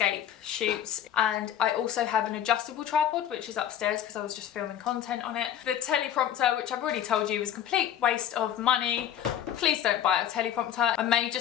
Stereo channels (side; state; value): right; quieter; 10.2 dB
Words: shoots, and I also have an adjustable tripod which is upstairs because I was just filming content on it. The teleprompter, which I've already told you was a complete waste of money. Please don't buy a teleprompter. I may